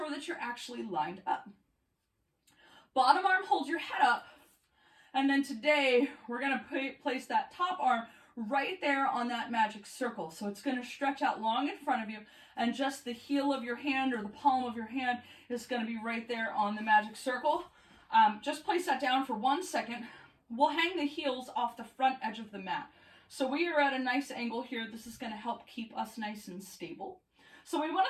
that you're actually lined up. Bottom arm holds your head up. And then today, we're going to place that top arm right there on that magic circle. So it's going to stretch out long in front of you, and just the heel of your hand or the palm of your hand is going to be right there on the magic circle. Just place that down for 1 second. We'll hang the heels off the front edge of the mat. So we are at a nice angle here. This is going to help keep us nice and stable. So we want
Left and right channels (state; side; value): identical; both; correlation 1.00